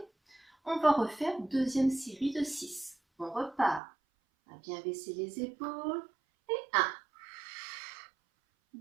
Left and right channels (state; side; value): drops out; left; at 3.8 s